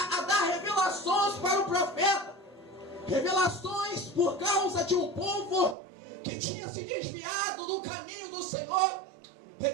dar revelações para o profeta. Revelações por causa de um povo que tinha se desviado do caminho do Senhor.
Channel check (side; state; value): left; drops out; at 5.8 s